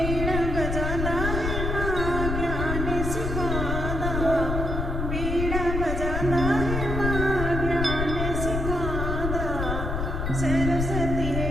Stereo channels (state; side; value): noise; left; rumble, 2 dB below the sound